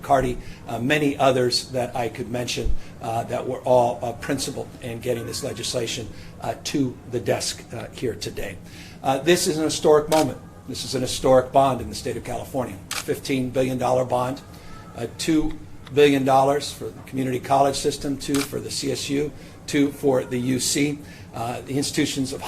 many others that I could mention that were all principled in getting this legislation to the desk here today. This is an historic moment. This is an historic bond in the state of California. $15 billion bond, $2 billion for the community college system, $2 for the CSU, $2 for the UC. The institutions of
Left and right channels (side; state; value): both; identical; correlation 1.00